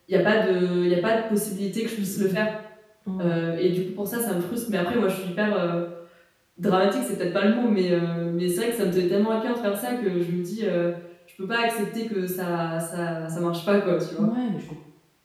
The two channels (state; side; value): identical; both; correlation 1.00